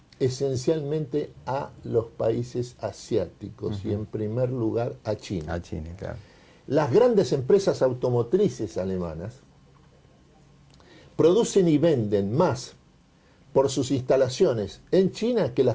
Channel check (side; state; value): both; identical; correlation 1.00